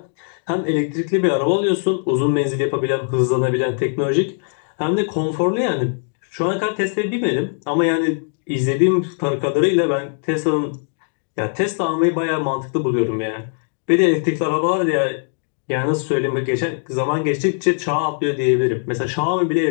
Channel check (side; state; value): right; silent; 60 dB below the other